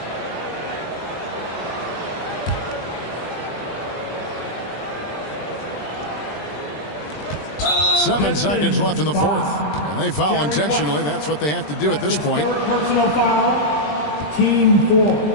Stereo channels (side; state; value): right; late; 20 ms